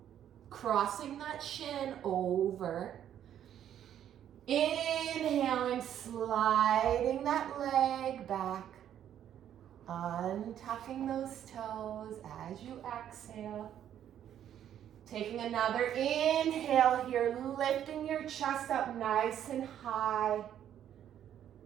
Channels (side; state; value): left; quieter; 10.3 dB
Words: crossing that shin over. Inhaling, sliding that leg back, untucking those toes as you exhale. Taking another inhale here, lifting your chest up nice and high.